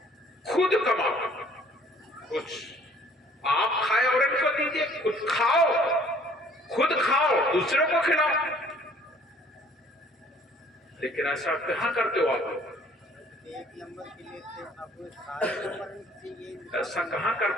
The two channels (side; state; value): both; normal; correlation 0.56